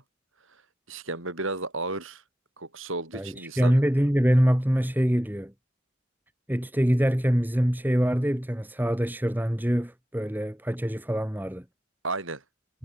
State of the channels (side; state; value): both; normal; correlation 0.91